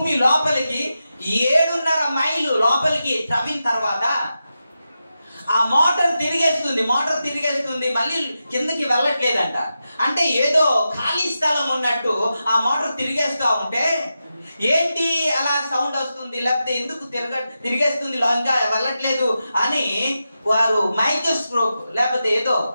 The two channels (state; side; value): inverted; both; correlation -0.90